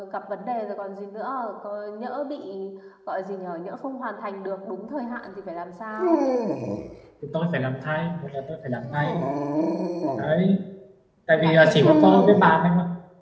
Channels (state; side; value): identical; both; correlation 1.00